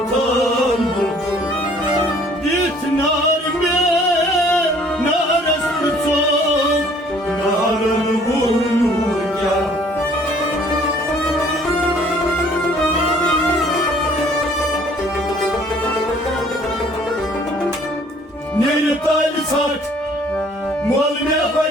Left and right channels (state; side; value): normal; both; correlation 0.57